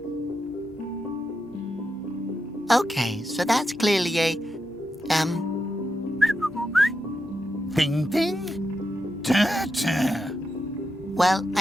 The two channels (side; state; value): both; normal; correlation 0.87